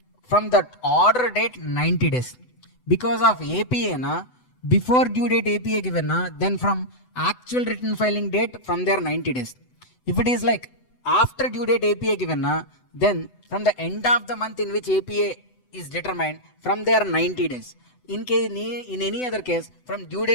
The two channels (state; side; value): late; right; 8.0 ms